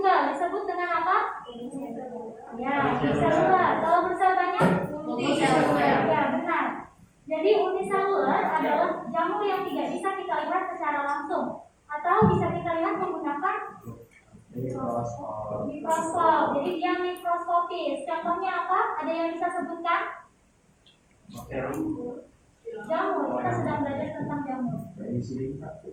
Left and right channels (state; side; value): identical; both; correlation 1.00